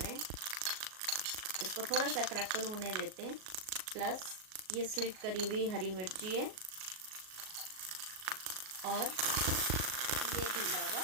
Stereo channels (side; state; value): left; late; 38 ms